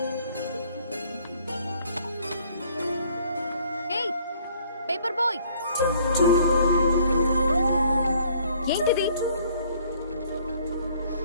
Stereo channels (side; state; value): both; inverted; correlation -0.60